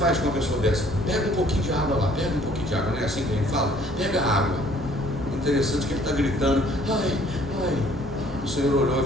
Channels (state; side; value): normal; both; correlation 0.59